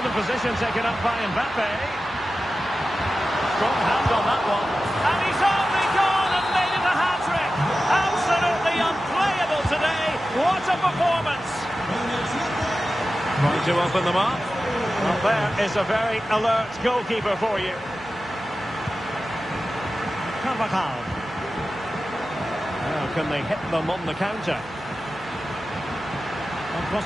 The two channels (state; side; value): noise; right; hum, 25 dB below the sound